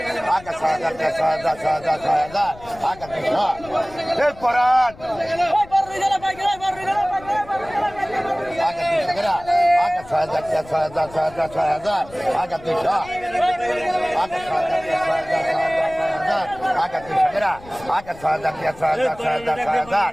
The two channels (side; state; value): left; noise; rumble, 20 dB below the sound